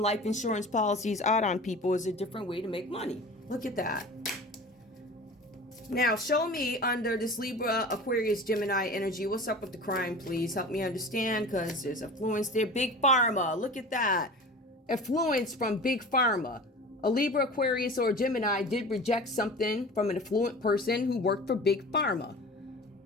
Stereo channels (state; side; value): normal; both; correlation 0.38